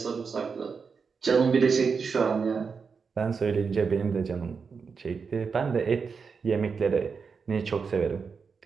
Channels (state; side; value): quieter; left; 5.4 dB